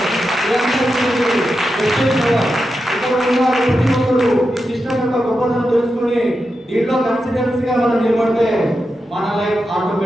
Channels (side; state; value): both; normal; correlation 0.88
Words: గొప్పతనం తెలుసుకుని దీంట్లో కాన్ఫిడెన్స్ గా మనం నిలబడితే మన లైఫ్